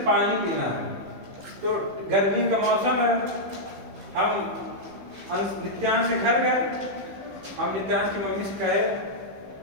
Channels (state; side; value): late; left; 15 ms